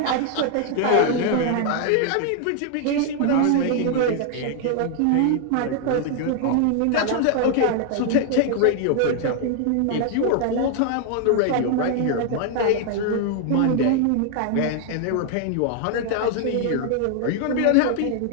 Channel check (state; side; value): different; both; correlation 0.00